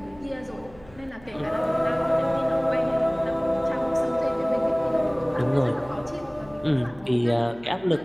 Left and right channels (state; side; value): noise; left; hum, 24 dB below the sound